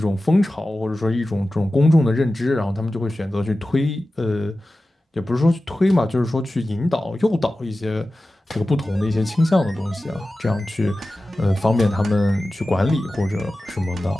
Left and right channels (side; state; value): both; normal; correlation 0.95